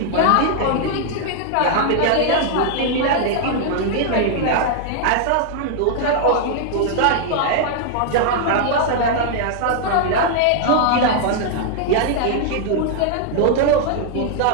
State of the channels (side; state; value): both; different; correlation -0.01